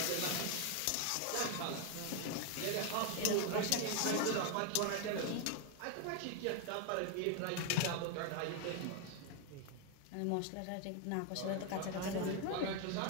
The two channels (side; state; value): both; different; correlation 0.01